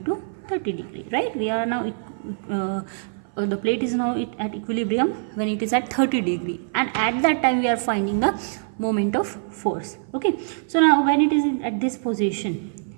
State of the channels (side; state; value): left; silent; 58 dB below the other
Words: 30 degree, right? We are now the plate is now at equilibrium when it is at 30 degree, and at that time we are finding the moment of force. Okay, so now when it is at this position,